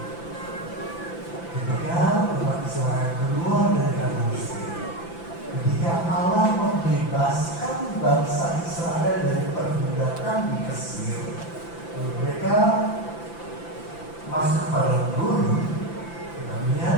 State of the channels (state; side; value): late; right; 5.9 ms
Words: Ketika umat Israel keluar dari tanah Mesir, ketika Allah membebaskan bangsa Israel dari perbudakan di Mesir, mereka masuk pada gurun. Kita